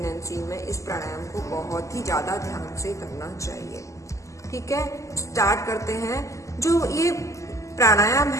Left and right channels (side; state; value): right; late; 0.15 ms